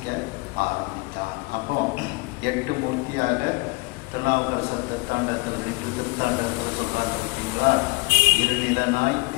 ஆரம்பித்தான். அப்போ 8 மூர்த்தியாக திருநாவுக்கரசர் திருத்தாண்டத்தில் 2 திருத்தாண்டத்தில் சொல்றாங்க பார்த்தீங்களா? இருநிலனாய்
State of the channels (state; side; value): quieter; right; 26.4 dB